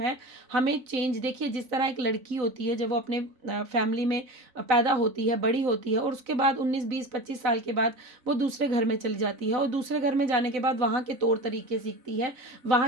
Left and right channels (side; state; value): left; late; 4.0 ms